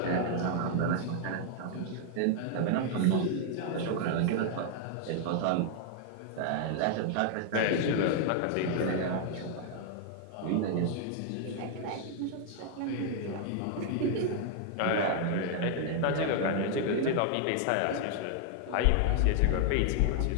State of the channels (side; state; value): both; different; correlation 0.00